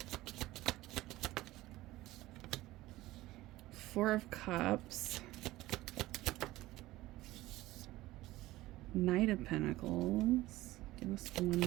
Four of Cups. Knight of Pentacles. Give us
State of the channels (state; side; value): quieter; left; 17.5 dB